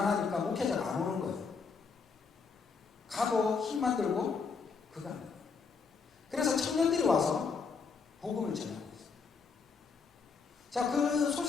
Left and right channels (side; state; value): right; quieter; 5.2 dB